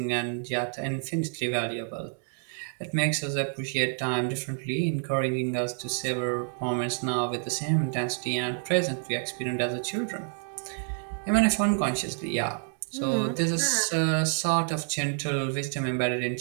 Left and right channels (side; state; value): left; silent; 59 dB below the other